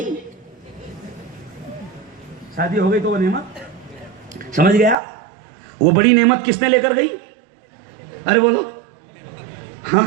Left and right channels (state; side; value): drops out; left; at 5.0 s